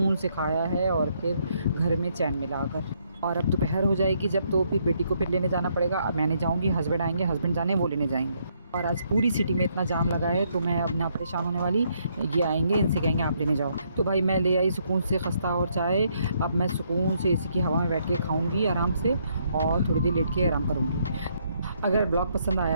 से खाया है और फिर घर में चैन मिला आकर। और अब दोपहर हो जाएगी जब, तो फिर बेटी को फिर लेने जाना पड़ेगा। अब मैं नहीं जाऊँगी, हस्बैंड आएंगे, हस्बैंड जाने वो लेने जाएंगे। और आज पूरी सिटी में इतना जाम लगा है तो मैं अब ना परेशान होने वाली, ये आएंगे, इनसे कहेंगे आप लेने जाओ। तो भाई मैं ले आई सुकून से खस्ता और चाय। अब मैं सुकून से एसी की हवा में बैठ के खाऊंगी आराम से और थोड़ी देर लेट के आराम करूँगी। अगर ब्लॉग पसंद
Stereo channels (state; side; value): inverted; both; correlation -0.72